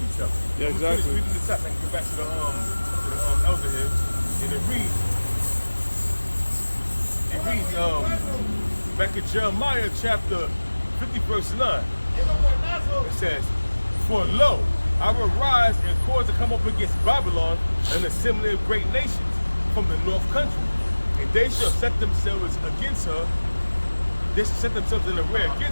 each other. Yeah, exactly. I'm reading this up and get back to the elder here, and it reads back in Jeremiah chapter 50 verse 9. It says, "For lo, I will rise and cause to come up against Babylon and assembly of great nations from the north country. And they shall set themselves against her. They shall set themselves in array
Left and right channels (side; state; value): both; inverted; correlation -1.00